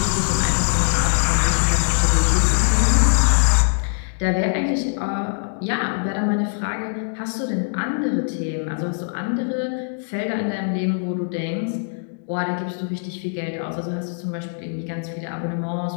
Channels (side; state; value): right; silent; digital silence